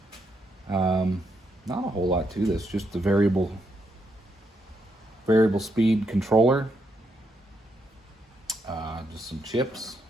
Not a whole lot to this, just the variable speed controller, just some chips,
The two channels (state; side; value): normal; both; correlation 0.79